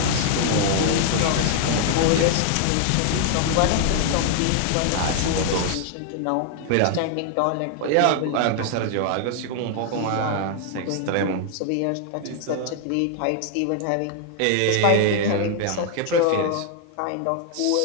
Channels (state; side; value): different; both; correlation 0.00